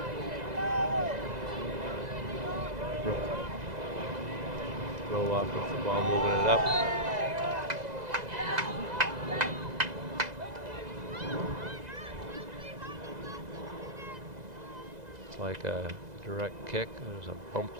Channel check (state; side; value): late; left; 2.0 ms